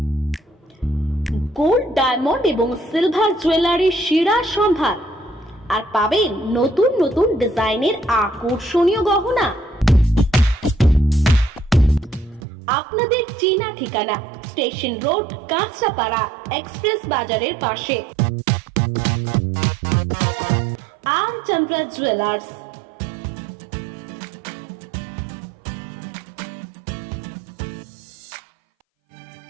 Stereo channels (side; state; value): left; drops out; at 12.4 s